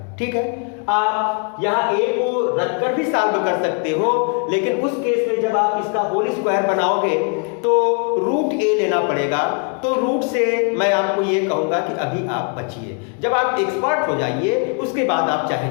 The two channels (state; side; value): quieter; right; 38.2 dB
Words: ठीक है, आप यहाँ a को रखकर भी सॉल्व कर सकते हो, लेकिन उस केस में जब आप इसका होल स्क्वायर बनाओगे तो रूट a लेना पड़ेगा। तो रूट से मैं आपको ये कहूंगा कि अभी आप बचिए, जब आप एक्सपर्ट हो जाइए उसके बाद आप चाहे